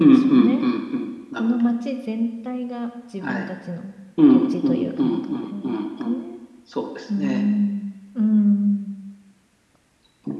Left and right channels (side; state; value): both; identical; correlation 1.00